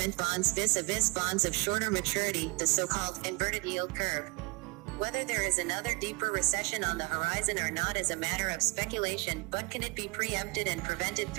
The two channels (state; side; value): quieter; left; 28.6 dB